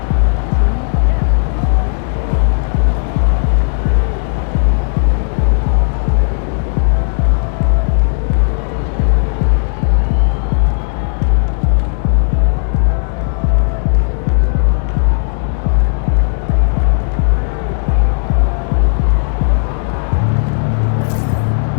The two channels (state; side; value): silent; right; 61 dB below the other